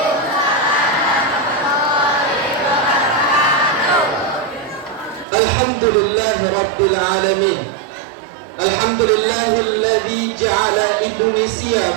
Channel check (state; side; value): drops out; left; at 5.2 s